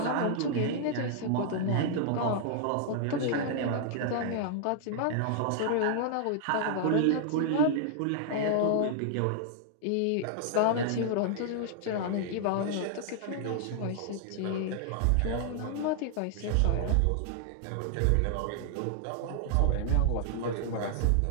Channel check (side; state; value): both; different; correlation -0.01